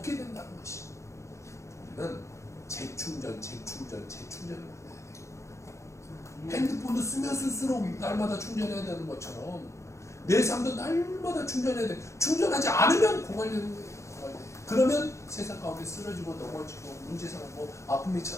된다는 것이. 우리는 재충전을 받아야 돼요. 핸드폰도 쓰면 쓸수록 날마다 충전해야 되는 것처럼 내 삶도 날마다 충전해야 돼. 충전하지 않으면 고갈되는 거예요. 그러면 세상 가운데 쓰러지고 넘어지고 문제 생기고 아픔이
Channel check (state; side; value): late; right; 0.14 ms